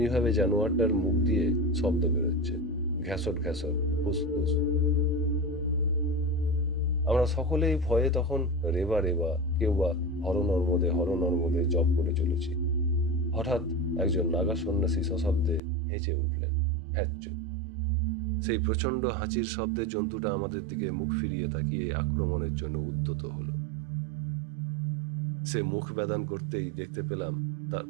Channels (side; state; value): left; drops out; at 15.6 s